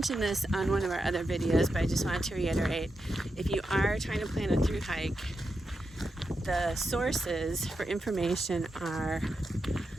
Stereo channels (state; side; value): normal; both; correlation 0.87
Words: this on one of our other videos, but I just wanted to reiterate, if you are trying to plan a thru hike, the sources for information are